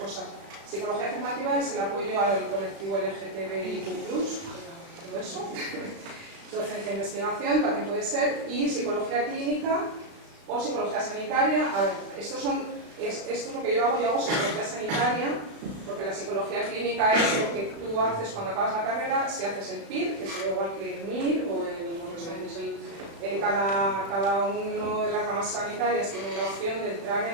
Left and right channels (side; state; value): left; late; 35 ms